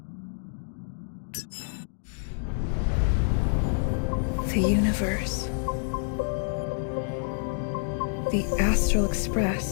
The universe. The Astral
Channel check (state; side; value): silent; right; digital silence